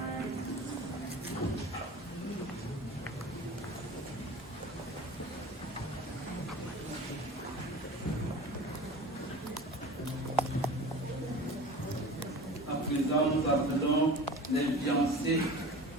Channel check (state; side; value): normal; both; correlation 0.38